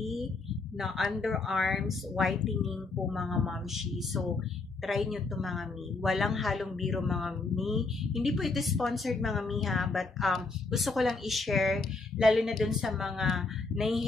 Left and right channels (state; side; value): quieter; right; 3.8 dB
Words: na underarms whitening po mga mamshi. So try nyo to mga mi. Walang halong biro mga mi. Hindi po ito sponsored mga mi ha, but gusto ko lang i-share, lalo na dun sa mga